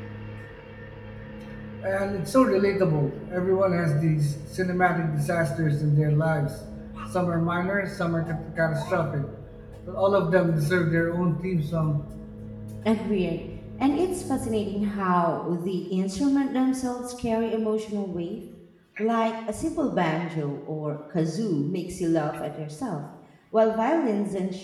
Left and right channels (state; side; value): identical; both; correlation 1.00